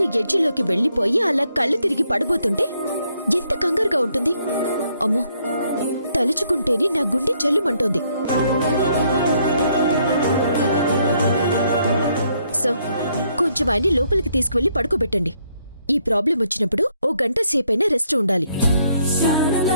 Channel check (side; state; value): both; inverted; correlation -0.72